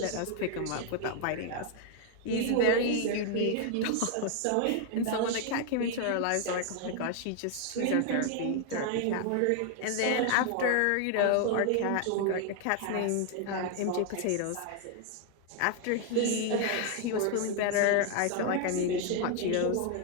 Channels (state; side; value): different; both; correlation 0.00